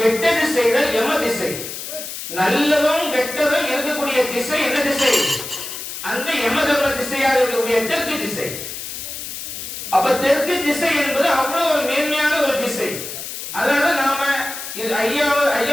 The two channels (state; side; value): noise; left; hiss, 8 dB below the sound